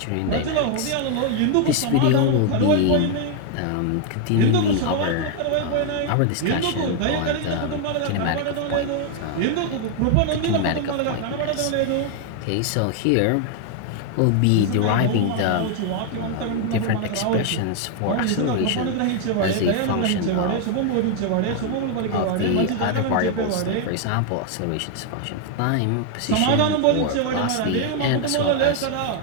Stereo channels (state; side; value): different; both; correlation 0.00